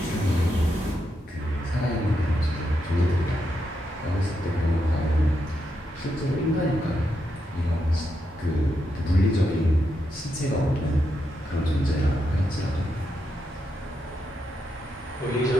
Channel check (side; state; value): both; normal; correlation 0.83